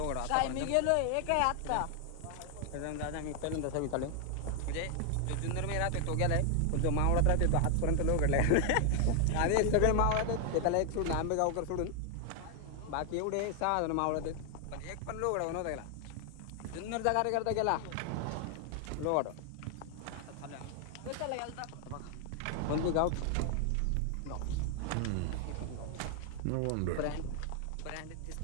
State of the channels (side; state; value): both; different; correlation 0.00